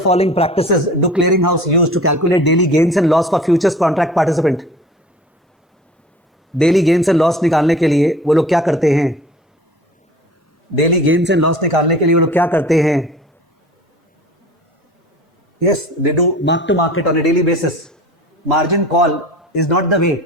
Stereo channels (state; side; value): normal; both; correlation 0.42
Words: following practices do clearinghouse use to calculate daily gains and loss for futures contract participant? Daily gains and loss निकालने के लिए वो लोग क्या करते हैं? डेली गेन्स एंड लॉस निकालने के लिए वो लोग क्या करते हैं? Yes, they do mark to market on a daily basis. Margin call is not the way.